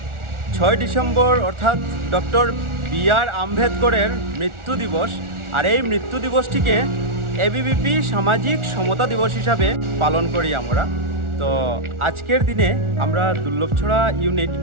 December অর্থাৎ ডক্টর বি.আর. আম্বেদকরের মৃত্যু দিবস। আর এই মৃত্যু দিবসটিকে এবিভিপি সামাজিক সমতা দিবস হিসাবে পালন করি আমরা। তো আজকের দিনে আমরা দুর্লভছড়া ইউনিট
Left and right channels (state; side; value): late; left; 1.4 ms